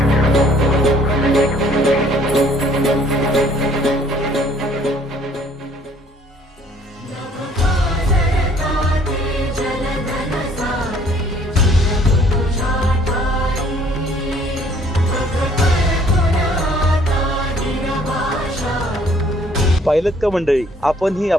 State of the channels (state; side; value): normal; both; correlation 0.59